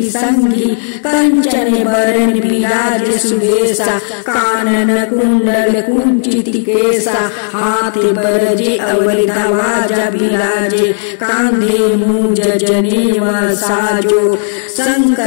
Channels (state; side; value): silent; right; digital silence